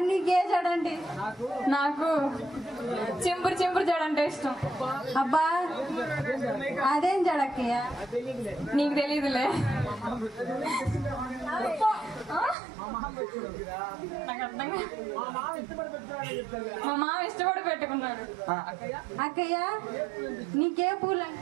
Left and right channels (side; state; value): left; drops out; at 12.6 s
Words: నీకే జడండి నాకు చింపురు జడంటే ఇష్టం అబ్బా అదేం జడక్కయ్య నీకు తెలీదులే మా మామ ఇష్టపడి పెట్టుకున్నాడు అక్కయ్య నీకే పూలు